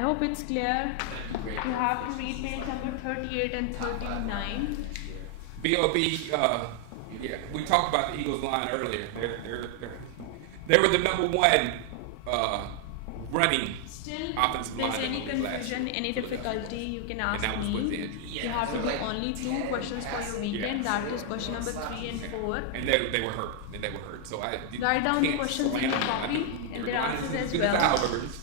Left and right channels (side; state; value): both; different; correlation 0.00